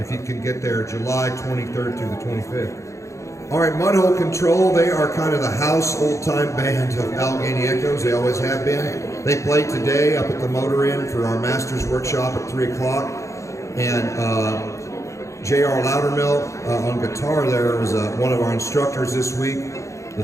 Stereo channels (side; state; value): right; late; 0.15 ms